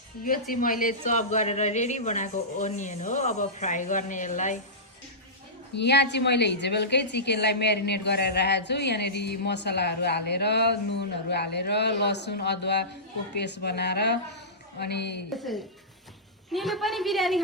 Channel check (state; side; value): normal; both; correlation -0.18